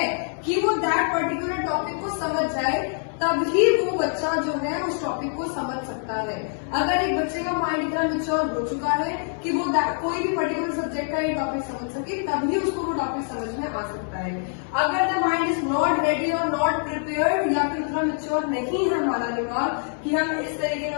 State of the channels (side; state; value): right; silent; 59 dB below the other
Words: कि वो दैट पर्टिकुलर टॉपिक को समझ जाए, तभी वो बच्चा जो है उस टॉपिक को समझ सकता है। अगर एक बच्चे का माइंड इतना मैच्योर हो चुका है कि वो कोई भी पर्टिकुलर सब्जेक्ट का ये टॉपिक समझ सके, तभी उसको वो टॉपिक समझ में आ सकता है। अगर the mind is not ready और नॉट प्रिपेयर्ड, या फिर उतना मैच्योर नहीं है हमारा दिमाग कि हम इस तरीके का